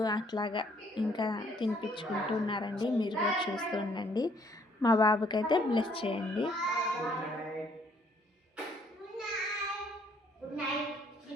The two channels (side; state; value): both; normal; correlation 0.65